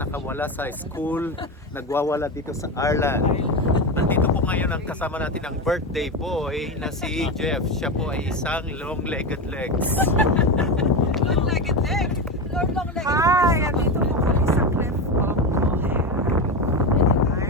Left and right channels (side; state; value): both; normal; correlation 0.17